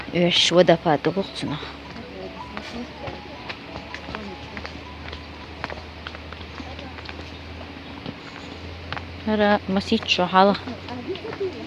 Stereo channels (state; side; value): identical; both; correlation 1.00